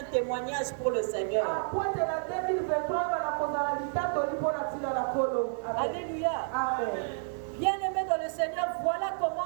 témoignage pour le Seigneur. Alléluia. Amen. Bien-aimés dans le Seigneur, voilà comment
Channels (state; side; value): silent; left; 58 dB below the other